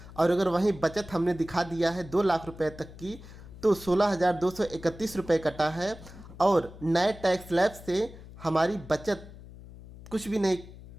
और अगर वहीं बचत हमने दिखा दिया है 2 लाख रुपए तक की तो 16,231 रुपये कटा है। और नए टैक्स स्लैब से हमारी बचत कुछ भी नहीं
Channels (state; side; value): noise; left; hum, 17 dB below the sound